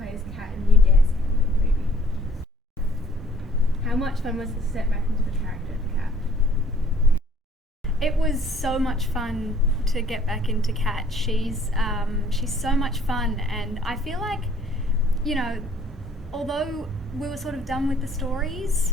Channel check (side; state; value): both; normal; correlation 0.58